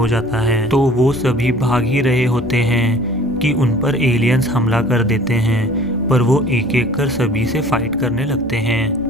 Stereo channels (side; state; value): both; normal; correlation 0.48